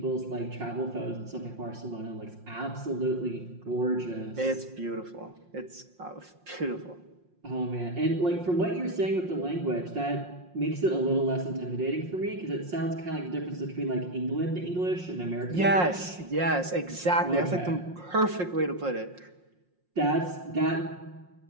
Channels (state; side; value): late; left; 5.6 ms